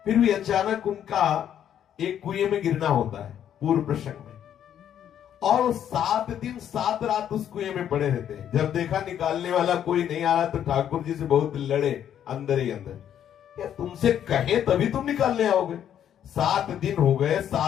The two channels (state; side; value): quieter; right; 9.9 dB